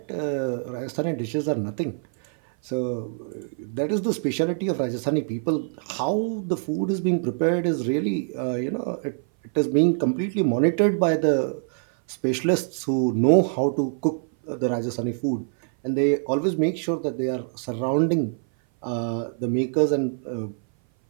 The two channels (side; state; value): left; silent; 58 dB below the other